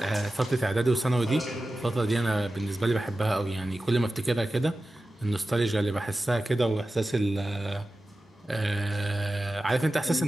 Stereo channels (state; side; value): normal; both; correlation 0.94